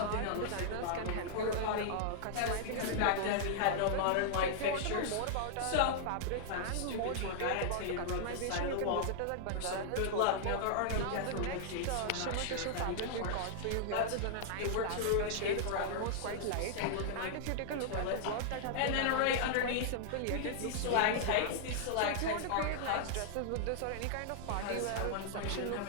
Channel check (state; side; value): different; both; correlation -0.01